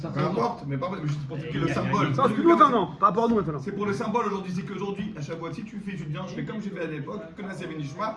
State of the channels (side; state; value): both; identical; correlation 1.00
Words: Peu importe, mais pas juste pour expliquer le symbole. Ça, c'est plus longtemps, non. Par rapport à nous maintenant. C'est pour le symbole aujourd'hui, c'est qu'aujourd'hui, à Shavuot, si tu viens, je fais comme j'ai fait à l'époque, que Nassé Benishma,